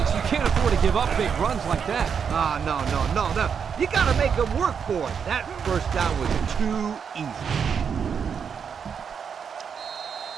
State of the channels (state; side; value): quieter; left; 6.8 dB